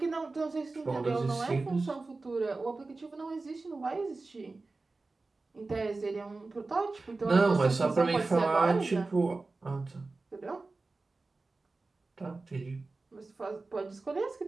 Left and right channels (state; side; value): quieter; left; 3.6 dB